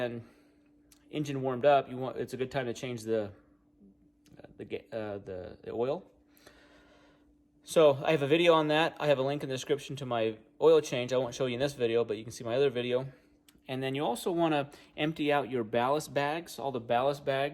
engine warmed up, it's a good time to change the oil. So I have a video on that. I have a link in the description to my oil change. I won't show you in this video, but you can see my other video. And then you also want to empty out your ballast bags, all the ballast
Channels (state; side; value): identical; both; correlation 1.00